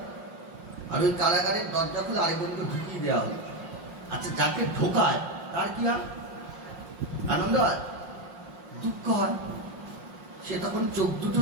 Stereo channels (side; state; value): left; late; 5.6 ms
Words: আর ওই কারাগারের দরজা খুলে আরেকজনকে ঢুকিয়ে দেওয়া হলো। আচ্ছা, যাকে ঢোকায় তার কি হয়, আনন্দ হয়, দুঃখ হয়? সে তখন চোখ দুটো